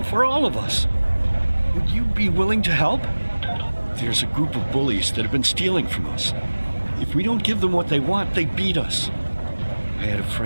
for all of us. Would you be willing to help? There's a group of bullies that have been stealing from us. If we don't give them what they want, they beat us. I had a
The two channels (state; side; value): inverted; both; correlation -1.00